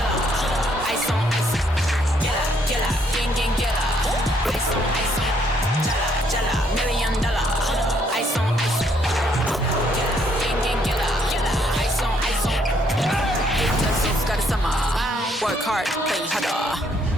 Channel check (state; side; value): normal; both; correlation 0.69